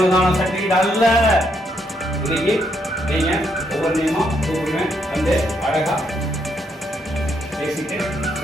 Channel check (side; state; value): both; normal; correlation 0.76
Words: சர்டிஃபிகேட் அல்ல. இன்னைக்கு நீங்க ஒவ்வொரு நியமா கூப்பிடுவேன் வந்து அழகா பேசிட்டு